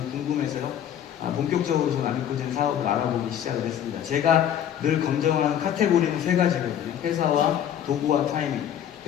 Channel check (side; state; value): right; quieter; 9.9 dB